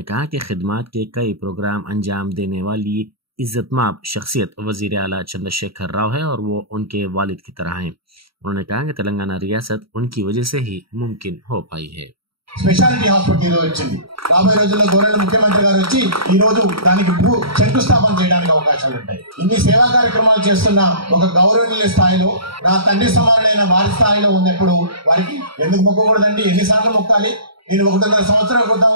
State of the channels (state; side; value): late; left; 0.75 ms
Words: कहा कि खिदमत के कई प्रोग्राम अंजाम देने वाली इज्जतमाब शख्सियत वजीर आला चंद्रशेखर राव है और वो उनके वालिद की तरह हैं। उन्होंने कहा कि तेलंगाना रियासत उनकी वजह से ही मुमकिन हो पाई है। స్పెషాలిటీ హాస్పిటల్ ఈరోజు వచ్చింది. రాబోయే రోజుల్లో గౌరవ ముఖ్యమంత్రి గారు వచ్చి ఈ రోజు దానికి శంకుస్థాపన చేయడానికి అవకాశాలు ఉంటాయి. ఇన్ని సేవా కార్యక్రమాలు చేస్తున్న ఒక గౌరవనీయ స్థాయిలో నా తండ్రి సమానులైన వారి స్థాయిలో ఉన్నప్పుడు వారికి ఎందుకు మొక్కకూడదండి? ఎన్నిసార్లు మొక్కాలి? నేను 1.5 సంవత్సరాల క్రితం